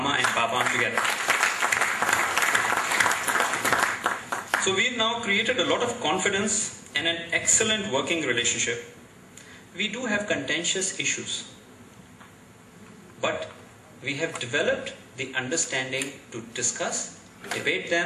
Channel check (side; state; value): both; identical; correlation 1.00